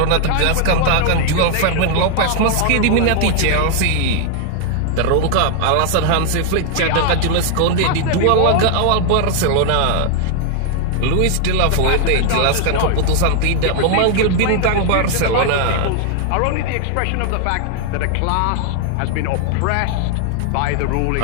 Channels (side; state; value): both; different; correlation 0.00